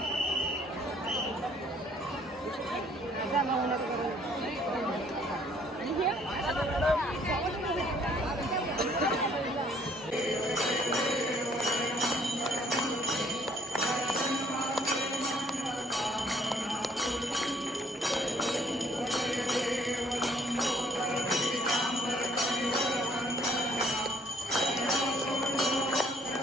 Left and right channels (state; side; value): normal; both; correlation 0.61